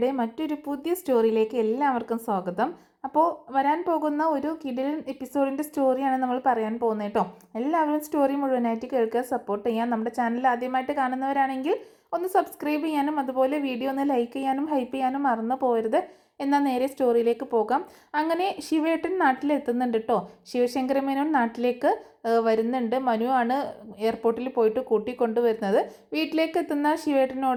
മറ്റൊരു പുതിയ സ്റ്റോറിയിലേക്ക് എല്ലാവർക്കും സ്വാഗതം. അപ്പോൾ വരാൻ പോകുന്ന ഒരു കിടിലൻ എപ്പിസോഡിൻ്റെ സ്റ്റോറിയാണ് നമ്മൾ പറയാൻ പോകുന്നത് കേട്ടോ. എല്ലാവരും സ്റ്റോറി മുഴുവനായിട്ട് കേൾക്കുക, സപ്പോർട്ട് ചെയ്യാൻ. നമ്മുടെ ചാനൽ ആദ്യമായിട്ട് കാണുന്നവരാണെങ്കിൽ ഒന്ന് സബ്സ്ക്രൈബ് ചെയ്യാനും അതുപോലെ വീഡിയോ ഒന്ന് ലൈക്ക് ചെയ്യാനും ഹൈപ്പ് ചെയ്യാനും മറന്നു പോകരുത്. എന്നാൽ നേരെ സ്റ്റോറിയിലേക്ക് പോകാം. അങ്ങനെ ശിവേട്ടൻ നാട്ടിലെത്തുന്നുണ്ട് കേട്ടോ. ശിവശങ്കരമേനോൻ നാട്ടിലേക്ക് വരുന്നുണ്ട്. മനു ആണ് എയർപോർട്ടിൽ പോയിട്ട് കൂട്ടിക്കൊണ്ടുവരുന്നത്. വീട്ടിലേക്ക് എത്തുന്ന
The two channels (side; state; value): both; identical; correlation 1.00